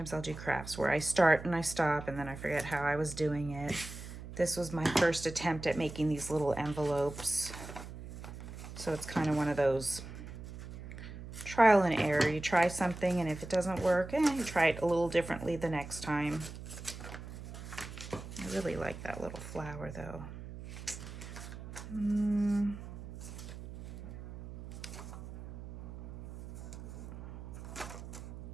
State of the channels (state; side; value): noise; right; hum, 11 dB below the sound